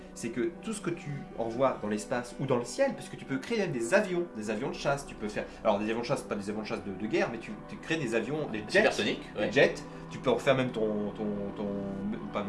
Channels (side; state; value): both; identical; correlation 1.00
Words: c'est que tout ce que tu envoies dans l'espace ou dans le ciel, parce que tu peux créer même des avions de chasse, tu peux faire, alors des avions de chasse, pas des avions de chasse de guerre, mais tu crées des avions, des jets, tu peux en faire même ton